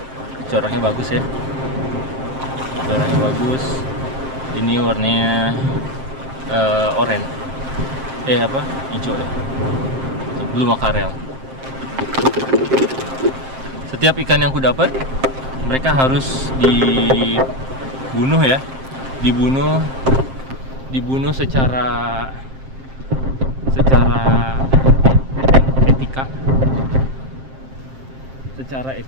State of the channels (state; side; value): late; left; 7.6 ms